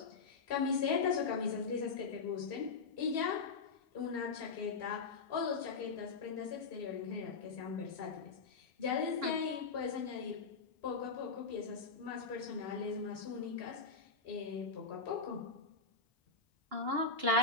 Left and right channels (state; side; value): quieter; right; 4.5 dB